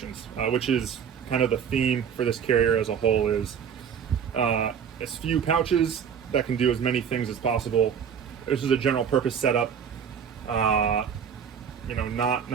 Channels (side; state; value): left; quieter; 7.5 dB